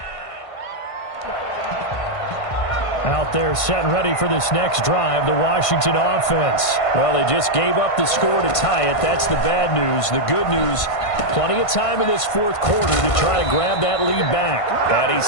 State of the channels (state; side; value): late; right; 1.5 ms